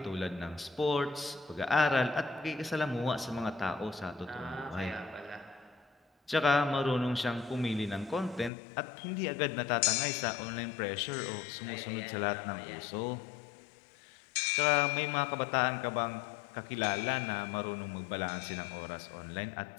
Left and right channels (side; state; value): right; drops out; at 8.5 s